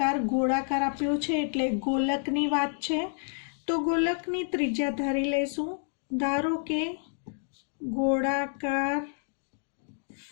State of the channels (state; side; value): silent; right; digital silence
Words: ગોળાકાર આપ્યો છે એટલે ગોલકની વાત છે, તો ગોલકની ત્રિજ્યા ધારી લઈશું। ધારો કે ગોળાકાર